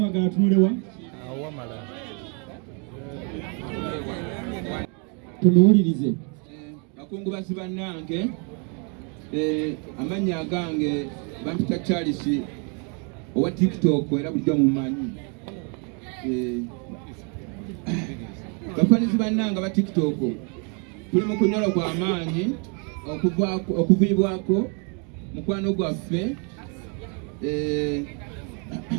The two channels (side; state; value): left; quieter; 36.7 dB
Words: tunulewa tunuwulirize. Bakungubazi bannange amannya agange bampita Charles owa TikTok era bulijjo mumanyi. Bafanizi bannange ba TikTok tuli mu kunyolo kwa maanyi okuviibwako mukwano gwaffe